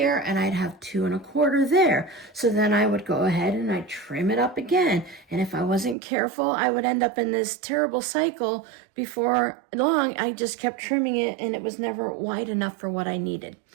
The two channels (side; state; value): left; drops out; at 6.0 s